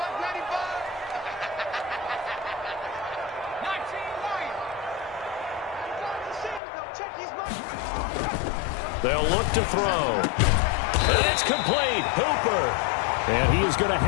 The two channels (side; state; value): right; drops out; at 6.6 s